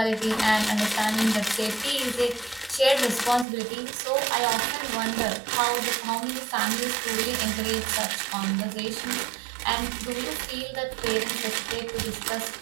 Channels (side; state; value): left; drops out; at 3.5 s